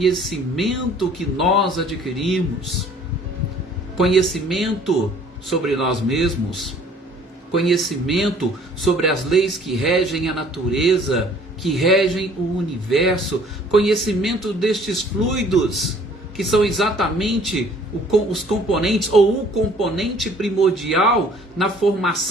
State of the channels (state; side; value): normal; both; correlation 0.55